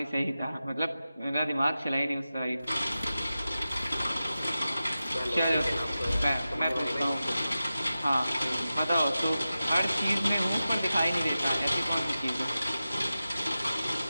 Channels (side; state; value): both; inverted; correlation -0.94